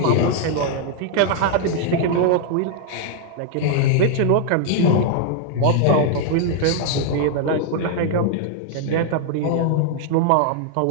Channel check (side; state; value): both; different; correlation 0.00